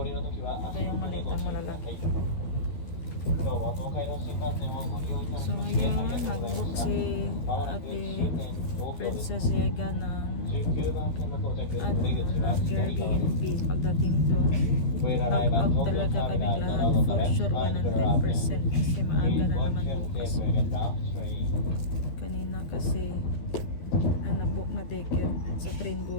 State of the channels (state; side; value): late; right; 12 ms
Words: Ito yung malitang malalaki. So ngayon, nag-book si Ate Princess Yega ng Airbnb. Pagdating doon, knock-out talaga kaming lahat. For sure, 100% kasi maaga na naman bukas. Kanina kasi ang nag-book na ticket sa train